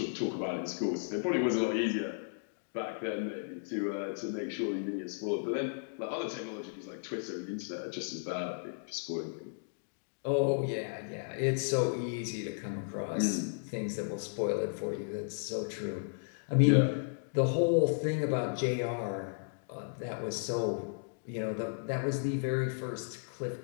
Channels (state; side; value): silent; right; digital silence